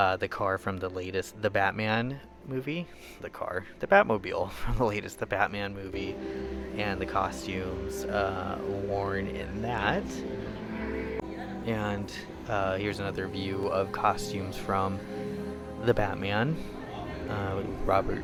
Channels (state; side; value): identical; both; correlation 1.00